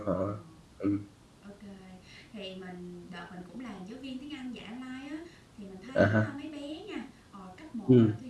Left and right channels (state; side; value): identical; both; correlation 1.00